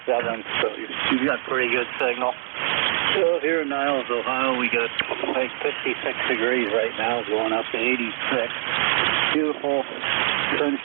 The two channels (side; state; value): left; silent; digital silence